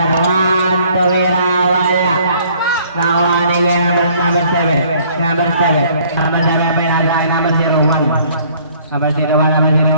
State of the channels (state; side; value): inverted; both; correlation -0.59